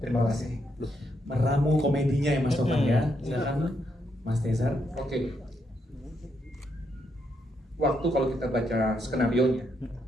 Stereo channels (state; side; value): normal; both; correlation 0.78